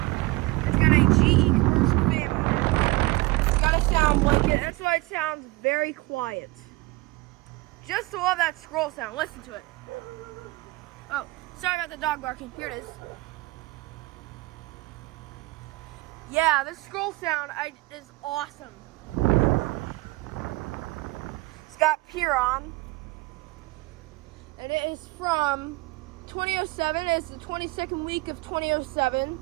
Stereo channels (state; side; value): quieter; left; 22.2 dB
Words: It's got a GE commercial fan motor. It's got a sound blanket. That's why it sounds very quiet. Just to love that scroll sound. Listen to it. Oh, sorry about the dog barking. Here it is. Yeah, this scroll sound is awesome. It's got Piron, and it is from 2007. It's the 22nd week of 2007.